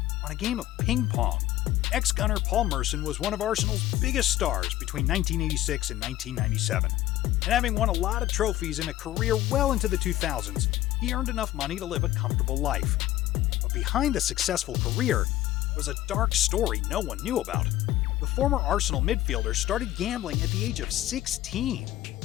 on a game of ping pong. Ex-gunner Paul Merson was one of Arsenal's biggest stars between 1986 and 1997. And having won a lot of trophies in a career well into the 2000s, he earned enough money to live a comfortable life. But behind the successful career was a dark story no one knew about. The former Arsenal midfielder started gambling at the age of 16,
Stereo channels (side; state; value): right; quieter; 14.4 dB